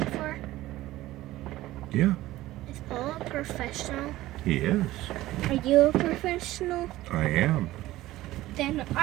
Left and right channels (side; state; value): left; quieter; 16.4 dB